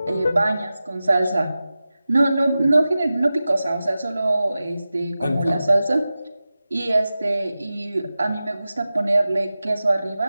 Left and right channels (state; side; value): inverted; both; correlation -0.94